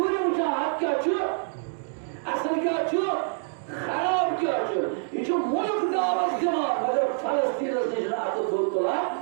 मुझे हाथ क्या छु असल क्या छु खराब क्या छु ये जो मुल्क दावत दिमा मगर फलस्तीन से जना तो धोतला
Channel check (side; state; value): left; silent; digital silence